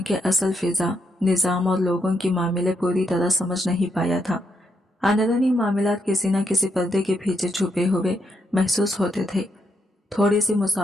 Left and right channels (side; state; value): both; normal; correlation 0.79